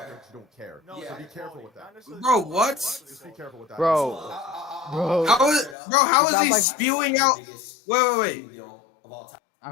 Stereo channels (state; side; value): drops out; right; at 5.8 s